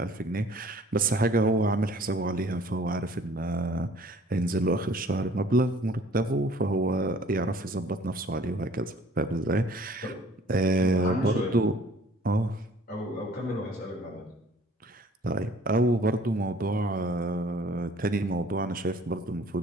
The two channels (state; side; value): normal; both; correlation 0.53